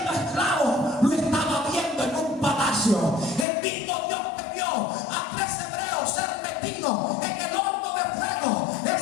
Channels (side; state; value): right; drops out; at 3.5 s